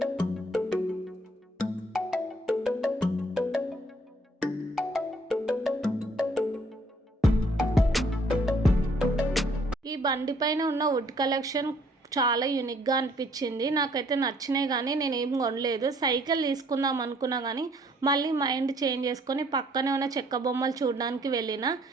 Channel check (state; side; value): normal; both; correlation 0.63